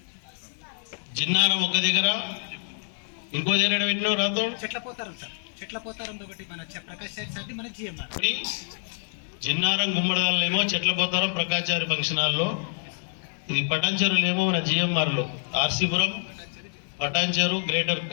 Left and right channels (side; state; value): right; silent; 60 dB below the other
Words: జిన్నారం ఒక దగ్గర, ఇంకో దగ్గర పెట్టినావు రాతో చెట్లపోతారంతో ఒకటి మన ప్రకాష్ సార్ మన జిఎంఆర్. జిన్నారం గుమ్మడదాలేమో చెట్లపోతారం ప్రకాచారి ఫంక్షన్ హాల్లో, ఇది పటాన్చెరులేమో మన జిఎంఆర్లో, ఆర్సీపురం పటాన్చెరు గ్రేటర్